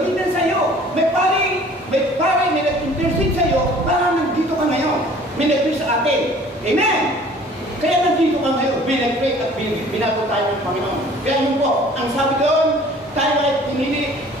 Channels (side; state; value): both; normal; correlation 0.51